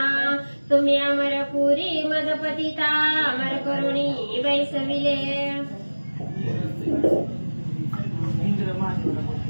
तुम्ही अमरपुरी मदपतिता अमर करुणी बैसविले.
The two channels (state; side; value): inverted; both; correlation -1.00